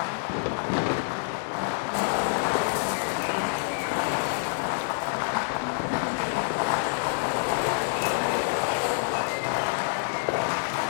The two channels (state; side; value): silent; right; digital silence